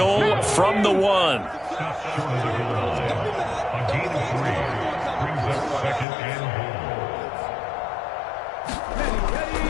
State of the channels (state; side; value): drops out; right; at 6.1 s